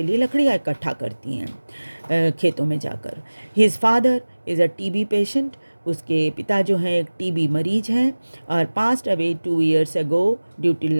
लिए लकड़ियाँ इकट्ठा करती हैं खेतों में जाकर. His father is a TB patient, उसके पिता जो हैं एक टीबी मरीज हैं और passed away 2 years ago due to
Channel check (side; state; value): both; inverted; correlation -1.00